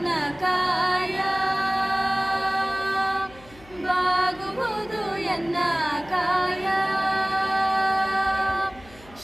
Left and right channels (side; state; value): left; noise; hum, 23 dB below the sound